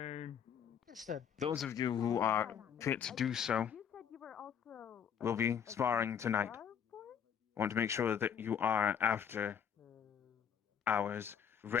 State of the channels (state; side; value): quieter; right; 8.2 dB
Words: Understood. Those of you who are fit to do so will be sparring tonight. I want to make sure that you are after hours